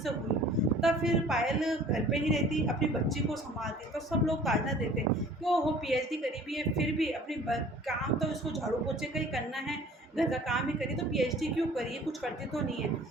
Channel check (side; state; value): both; normal; correlation 0.49